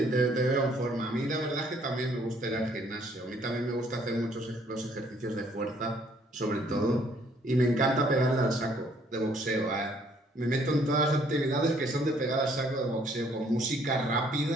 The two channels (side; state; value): both; normal; correlation 0.64